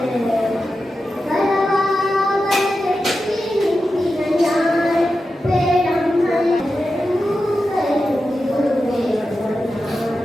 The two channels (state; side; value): normal; both; correlation 0.91